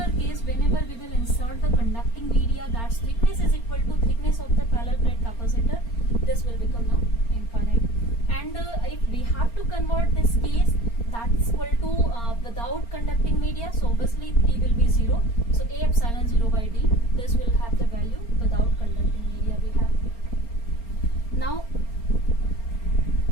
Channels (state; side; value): late; right; 4.3 ms